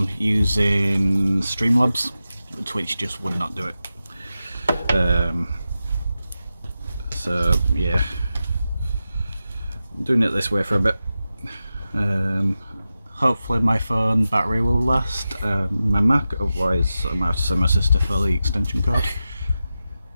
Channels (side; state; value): both; inverted; correlation -0.92